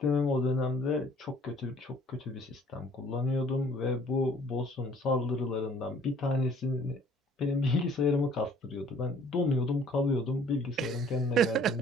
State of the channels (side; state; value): both; normal; correlation 0.56